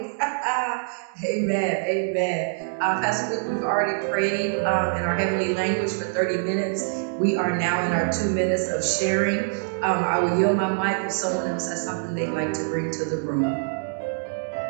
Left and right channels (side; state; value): left; silent; digital silence